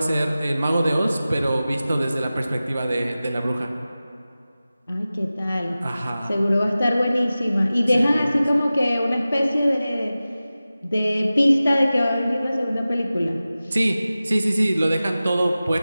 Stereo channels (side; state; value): both; inverted; correlation -0.96